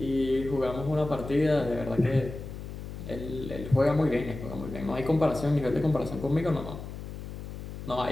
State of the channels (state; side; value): noise; left; hum, 9 dB below the sound